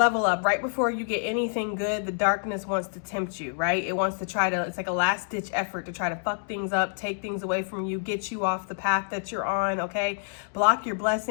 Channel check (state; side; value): silent; right; digital silence